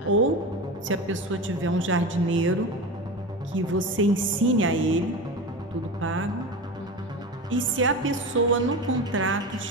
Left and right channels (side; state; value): both; normal; correlation 0.26